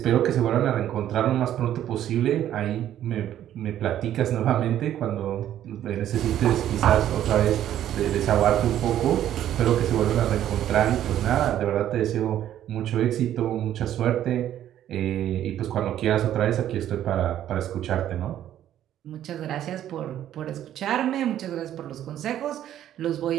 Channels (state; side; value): quieter; left; 11.5 dB